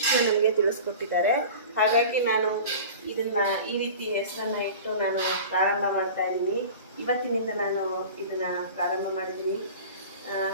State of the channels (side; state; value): both; inverted; correlation -0.37